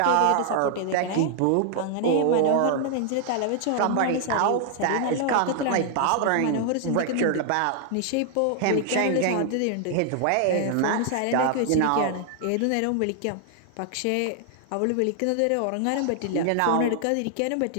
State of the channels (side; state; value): both; different; correlation 0.00